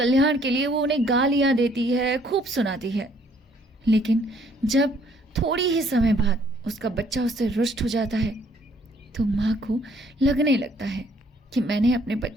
के लिए वो उन्हें गालियाँ देती है, खूब सुनाती है। लेकिन जब थोड़ी ही समय बाद उसका बच्चा उससे रुष्ट हो जाता है तो माँ को लगने लगता है कि मैंने अपने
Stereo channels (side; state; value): both; normal; correlation 0.64